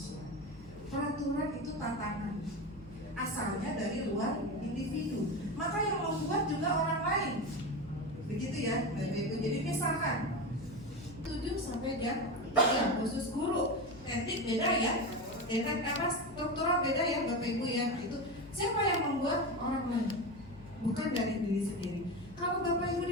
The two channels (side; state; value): left; noise; hum, 19 dB below the sound